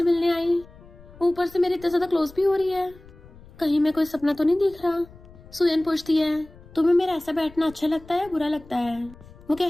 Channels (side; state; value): left; noise; rumble, 22 dB below the sound